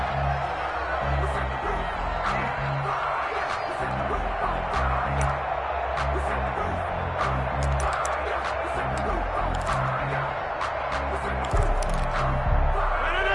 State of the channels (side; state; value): both; identical; correlation 1.00